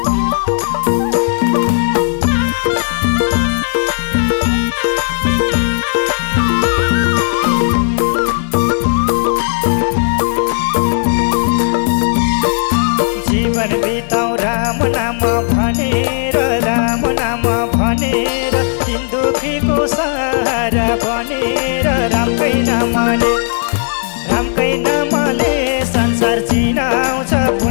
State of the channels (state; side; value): silent; right; digital silence